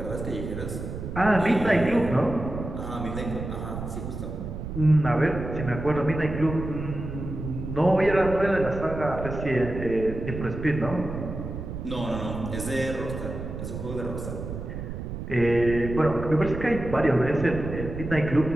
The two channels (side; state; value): right; noise; rumble, 7 dB below the sound